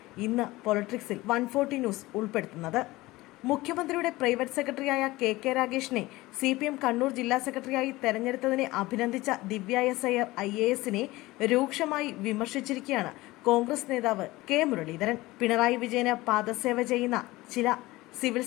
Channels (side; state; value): right; quieter; 19.4 dB